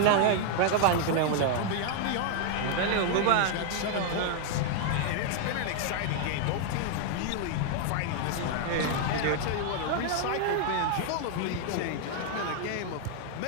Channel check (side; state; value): both; different; correlation 0.00